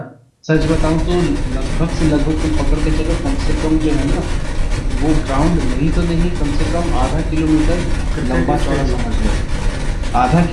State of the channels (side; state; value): both; identical; correlation 1.00